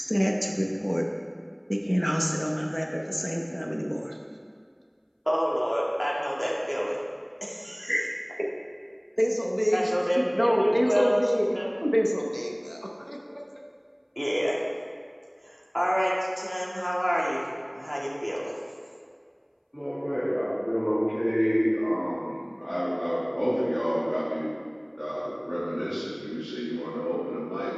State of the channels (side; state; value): both; identical; correlation 1.00